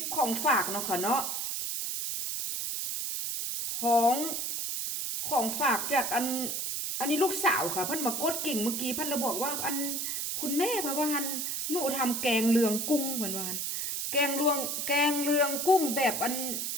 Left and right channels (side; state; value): right; noise; hiss, 2 dB below the sound